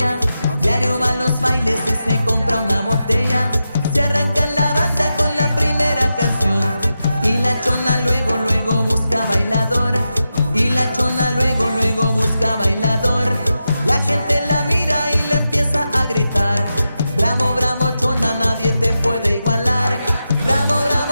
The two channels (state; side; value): inverted; both; correlation -0.89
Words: Diario va a los bailes y se compra una botella. Se arranca la banda con la primera canción. Y la Chona luego, luego busca bailador. Y la Chona luego, luego busca bailador. La gente la mira y le empieza a gritar: bravo, bravo, Chona, nadie te puede igualar. Bravo,